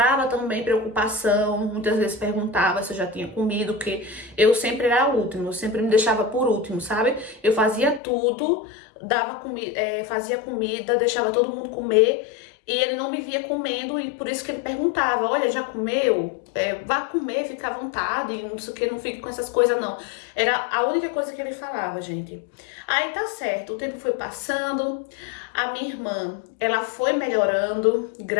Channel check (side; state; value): right; drops out; at 8.0 s